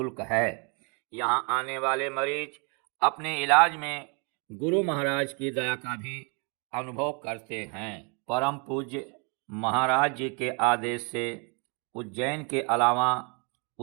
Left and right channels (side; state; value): left; quieter; 35.4 dB